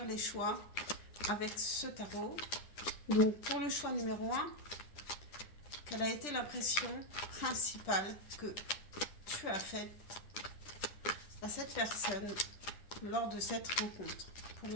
les choix avec ce tarot. Donc pour le choix numéro un, quelle a été l'impression principale que tu as faite à cette personne lors de cette rencontre? Pour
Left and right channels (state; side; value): late; right; 10 ms